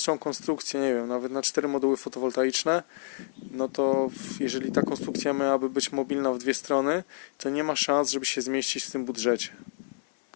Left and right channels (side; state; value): right; silent; digital silence